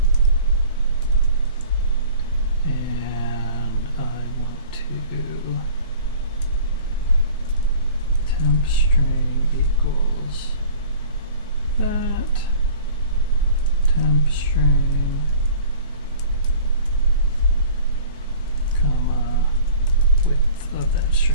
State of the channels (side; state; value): both; inverted; correlation -0.46